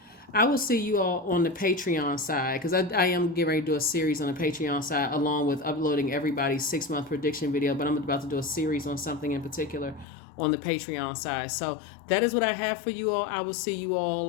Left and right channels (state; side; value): drops out; right; at 10.1 s